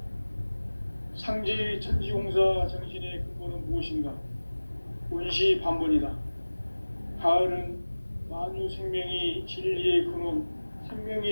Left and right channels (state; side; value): inverted; both; correlation -1.00